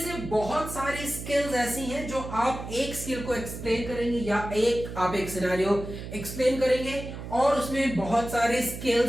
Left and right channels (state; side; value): noise; right; hum, 9 dB below the sound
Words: बहुत सारी स्किल्स ऐसी हैं जो आप एक स्किल को एक्सप्लेन करेंगे या आप एक सिनेरियो एक्सप्लेन करेंगे और उसमें बहुत सारी